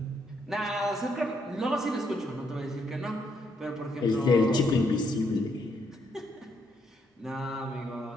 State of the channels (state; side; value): normal; both; correlation 0.74